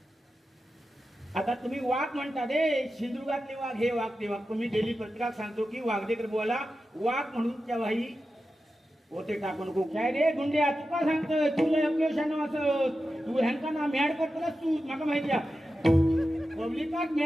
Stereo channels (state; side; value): normal; both; correlation 0.92